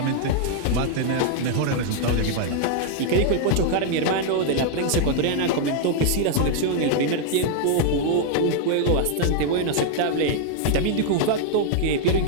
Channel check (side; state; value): both; different; correlation 0.00